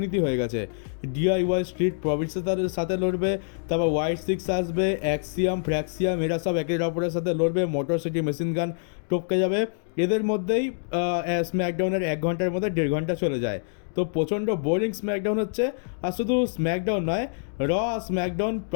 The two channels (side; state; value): right; silent; digital silence